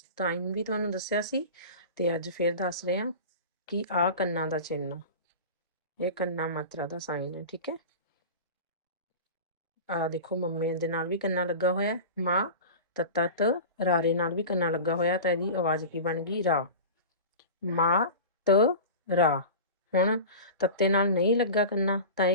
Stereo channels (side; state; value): both; inverted; correlation -0.32